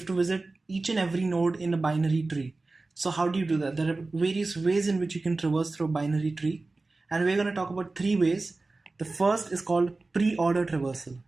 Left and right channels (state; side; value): quieter; left; 3.4 dB